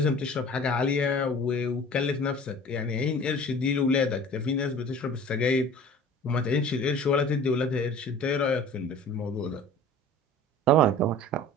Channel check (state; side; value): normal; both; correlation 0.44